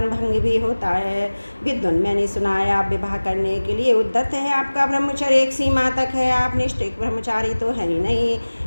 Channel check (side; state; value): both; inverted; correlation -1.00